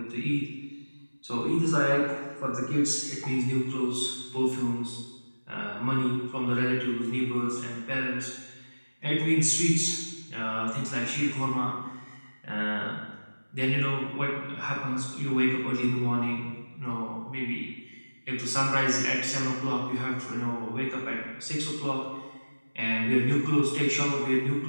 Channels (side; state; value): both; inverted; correlation -1.00